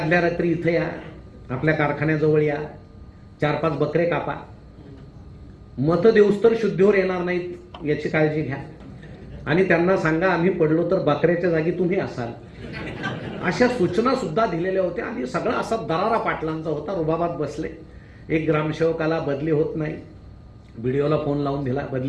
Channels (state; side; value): identical; both; correlation 1.00